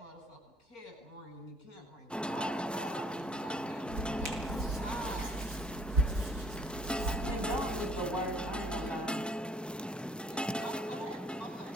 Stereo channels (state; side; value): normal; both; correlation 0.61